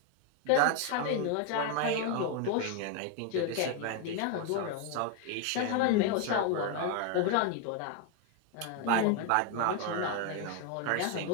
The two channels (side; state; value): both; different; correlation 0.01